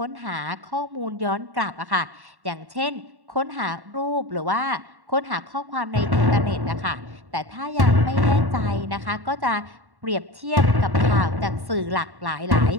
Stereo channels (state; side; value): late; left; 1.1 ms